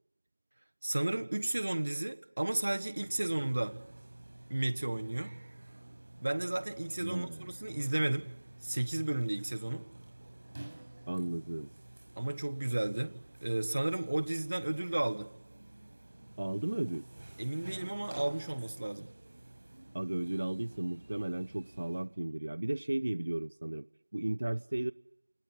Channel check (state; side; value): inverted; both; correlation -1.00